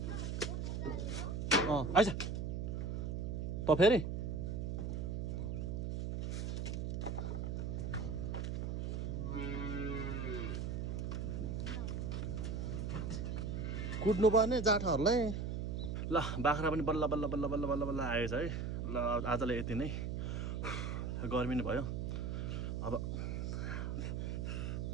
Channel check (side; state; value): right; noise; hum, 2 dB below the sound